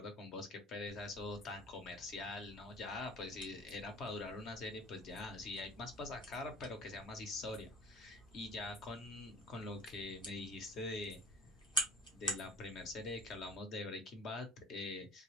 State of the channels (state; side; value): normal; both; correlation 0.45